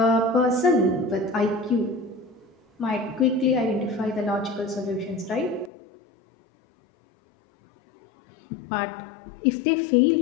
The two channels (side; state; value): right; drops out; at 5.7 s